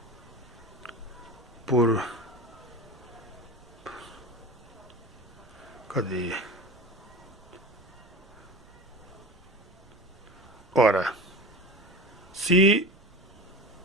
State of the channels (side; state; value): right; noise; rumble, 25 dB below the sound